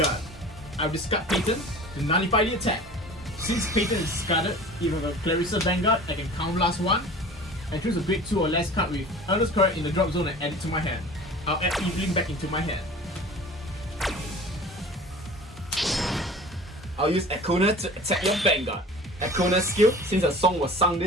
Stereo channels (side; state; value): both; normal; correlation 0.41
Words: I'll discard Peyton to nullify the attack. Since Peyton is discarded, if I have a Clarissa Vanguard, I can Counter Blast 1 and choose a grade 2 or less card with Earnest Correct in the drop zone and add it to my hand. I'll add Evelyn back into my hand. I'll use Econa to attack your Vanguard. Econa's skill, since a song was sung